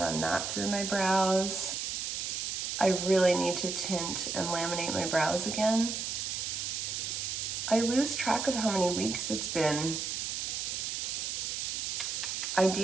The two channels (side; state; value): right; noise; hiss, 2 dB below the sound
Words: that through my brows. I really need to tint and laminate my brows again. I lose track of how many weeks it's been.